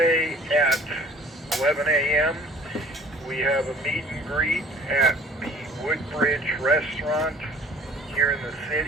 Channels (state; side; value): normal; both; correlation 0.50